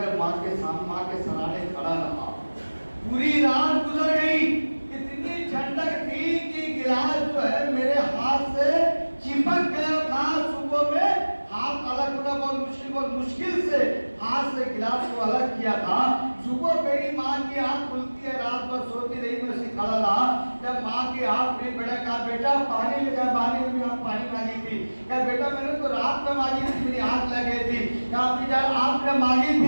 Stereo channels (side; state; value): both; inverted; correlation -1.00